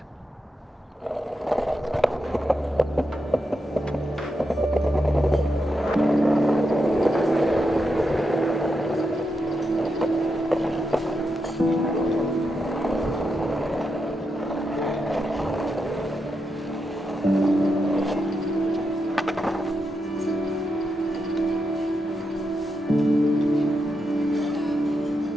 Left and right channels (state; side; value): normal; both; correlation 0.85